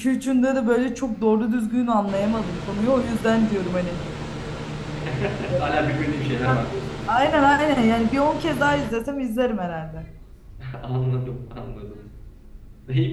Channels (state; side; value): identical; both; correlation 1.00